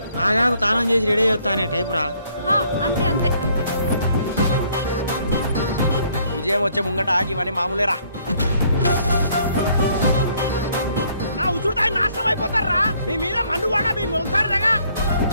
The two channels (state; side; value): inverted; both; correlation -0.65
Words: ఆగాకు తానం చేసి రెడీ అవుతా అనే టైపు రా. అంతే అంతే అంతే. విజయం వచ్చే ముంగట ఆగివని మామూలేరా. నా ఉచుడుతాయి నాశనం అయిపోతారా. మీ మీద మన్ను కూడా మీ మొలుతారు.